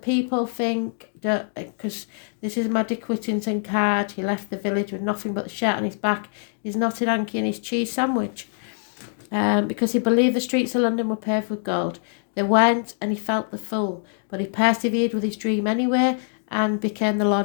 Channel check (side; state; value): right; silent; 63 dB below the other